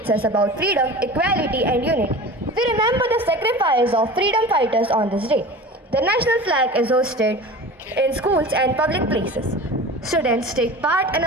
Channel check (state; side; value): normal; both; correlation 0.36